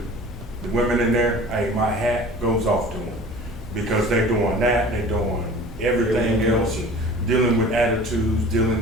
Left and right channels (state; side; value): normal; both; correlation 0.42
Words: women in there, hey, my hat goes off to them because they're doing that, they're doing everything else, and dealing with attitudes,